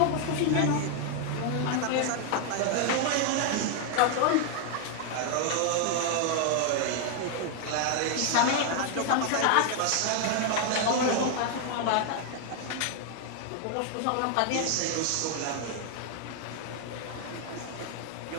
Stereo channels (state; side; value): different; both; correlation 0.00